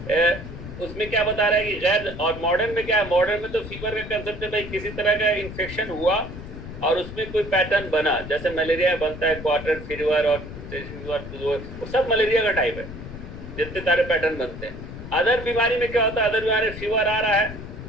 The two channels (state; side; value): noise; left; rumble, 11 dB below the sound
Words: उसमें क्या बता रहा है कि गैर, और मॉडर्न में क्या है? मॉडर्न में तो फीवर का कंसेप्ट है भाई, किसी तरह का इन्फेक्शन हुआ और उसमें कोई पैटर्न बना, जैसे मलेरिया बनता है, क्वार्टर फीवर और वो सब मलेरिया का टाइप है, जितने सारे पैटर्न बनते हैं। अदर बीमारी में क्या होता है? अदर बीमारी फीवर आ रहा